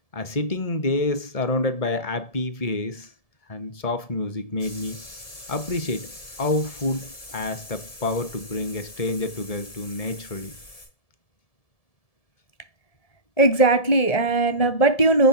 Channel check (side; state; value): right; late; 1.7 ms